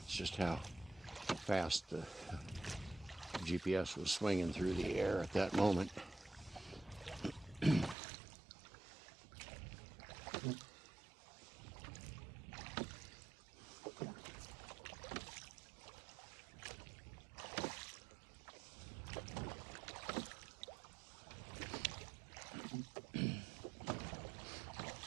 just how fast the GPS was swinging through the air at that moment.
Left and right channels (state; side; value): drops out; left; at 8.0 s